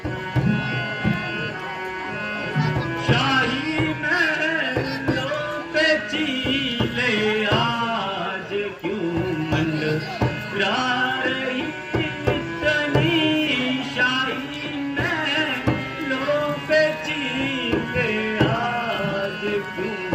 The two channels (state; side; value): identical; both; correlation 1.00